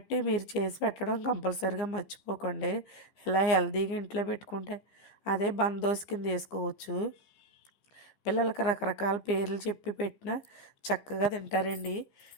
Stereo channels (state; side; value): late; right; 15 ms